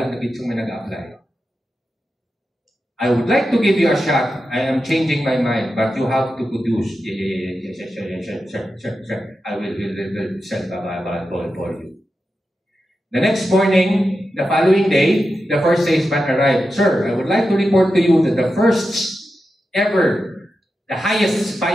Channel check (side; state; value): both; normal; correlation 0.90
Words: na bitsong may nag-apply. I would like to give you a shot. I am changing my mind, but you have to produce. Sure. I will send a ball for you. The next morning, the following day, the first salesman arrived. Sir, I would like to report to you that the first ever, the highest